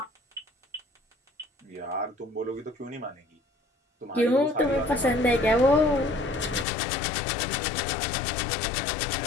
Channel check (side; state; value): right; drops out; at 6.7 s